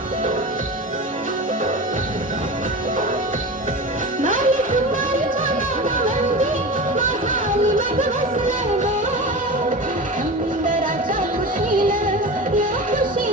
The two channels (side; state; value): both; normal; correlation 0.29